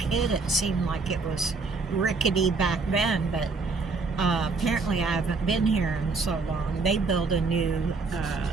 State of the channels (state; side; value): quieter; left; 4.1 dB